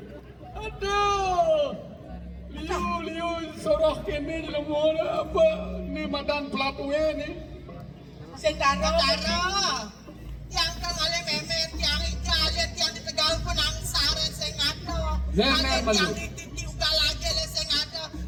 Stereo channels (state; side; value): identical; both; correlation 1.00